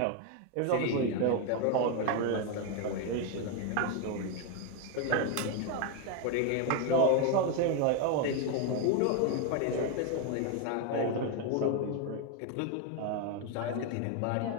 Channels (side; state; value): both; different; correlation 0.01